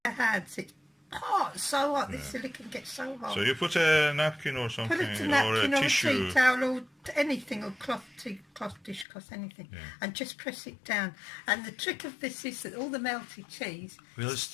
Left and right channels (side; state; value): right; drops out; at 9.1 s